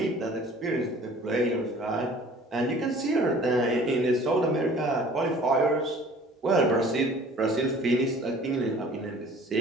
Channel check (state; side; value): normal; both; correlation 0.50